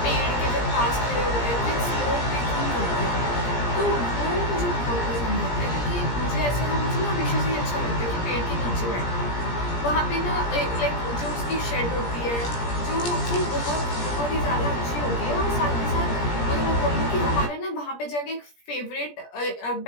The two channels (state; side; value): late; right; 17 ms